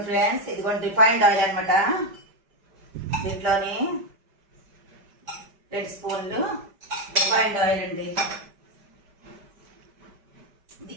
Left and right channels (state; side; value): late; left; 5.1 ms